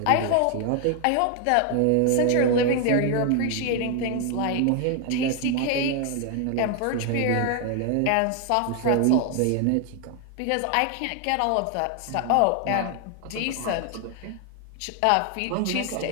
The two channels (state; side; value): different; both; correlation 0.00